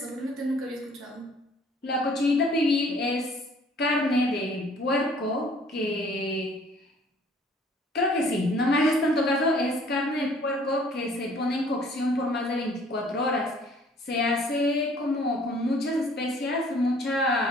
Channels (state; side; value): normal; both; correlation 0.56